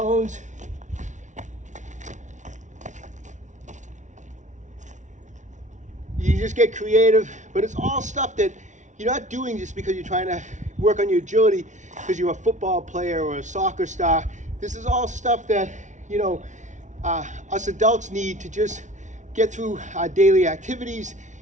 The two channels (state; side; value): late; left; 0.36 ms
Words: You just get creative, but it's all stuff that you're not doing just because you're trying to work on your agility because you're a football player or a soccer star. This is all stuff that, you know, us adults need to just get through our daily activities.